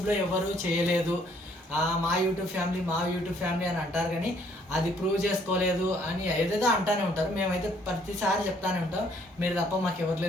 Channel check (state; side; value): normal; both; correlation 0.64